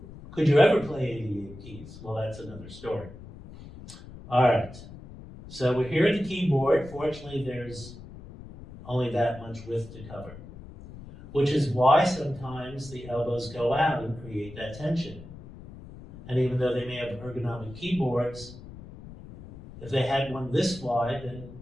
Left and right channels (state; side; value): noise; left; rumble, 16 dB below the sound